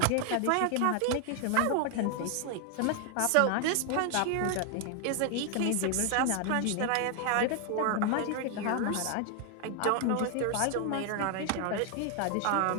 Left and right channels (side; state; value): both; different; correlation 0.00